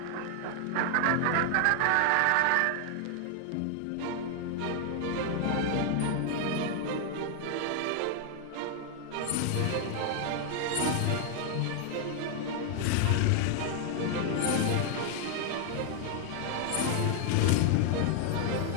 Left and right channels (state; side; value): different; both; correlation 0.00